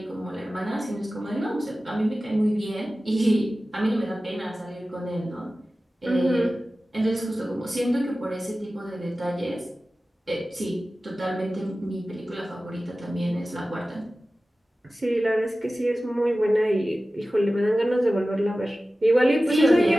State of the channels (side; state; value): both; normal; correlation 0.96